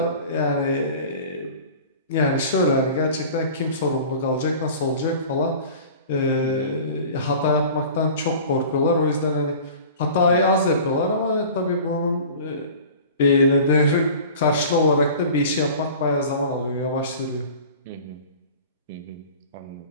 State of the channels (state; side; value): inverted; both; correlation -0.41